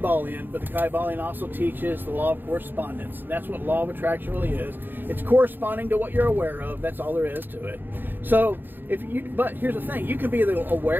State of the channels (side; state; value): left; late; 0.093 ms